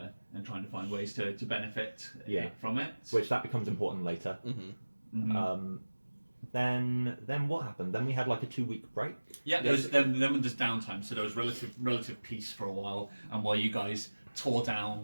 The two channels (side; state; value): both; inverted; correlation -1.00